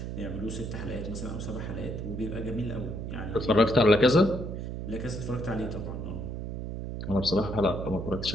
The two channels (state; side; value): noise; right; hum, 5 dB below the sound